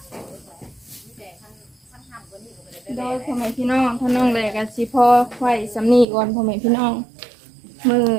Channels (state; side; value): drops out; left; at 6.1 s